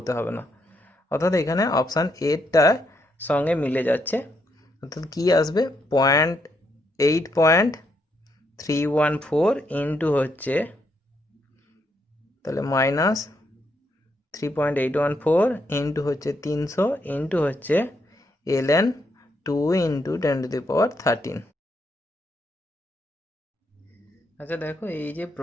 হবে না। অর্থাৎ এখানে অপশান এটার সঙ্গে মিলে যাচ্ছে। অর্থাৎ কী আসবে, 0.8.314 ইন্টু হচ্ছে তাহলে মাইনাস 3.814 ইন্টু হচ্ছে 300 ইন্টু হচ্ছে ln 2 ইন্টু 10⁻13। আচ্ছা দেখো, এই যে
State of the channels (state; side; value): normal; both; correlation 0.77